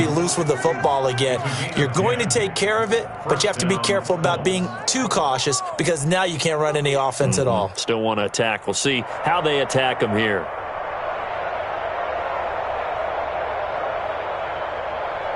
loose with the football again. You're going to take care of it, but you have to be careful about being too cautious because now you can't run any offense at all. Still want to attack. We'll see how they attack them here.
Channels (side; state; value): both; identical; correlation 1.00